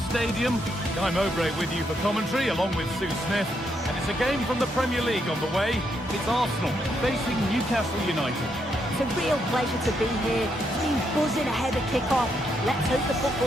Stadium. Guy Mowbray with you for commentary along with Sue Smith. And it's a game from the Premier League on the way. It's Arsenal facing Newcastle United. It's a real pleasure to be here. Team buzzing ahead of kick-off. Let's hope the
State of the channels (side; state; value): both; normal; correlation 0.78